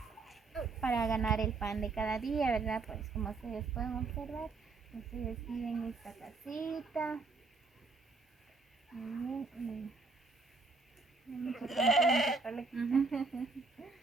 para ganar el pan de cada día, ¿verdad? Pues como ustedes pueden observar, ustedes viven en esta casita. Muy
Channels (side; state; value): left; quieter; 4.0 dB